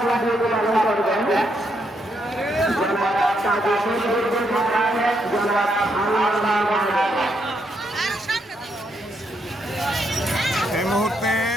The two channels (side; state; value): both; normal; correlation 0.77